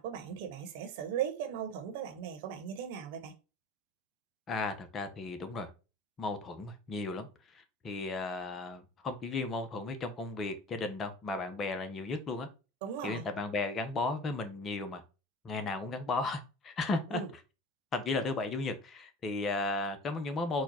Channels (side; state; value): both; normal; correlation 0.39